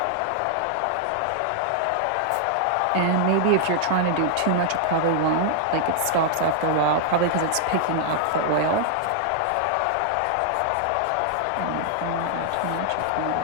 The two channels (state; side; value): different; both; correlation -0.01